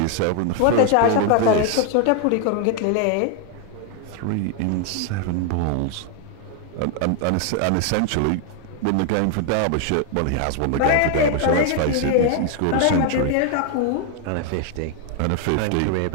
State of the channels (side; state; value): both; different; correlation 0.00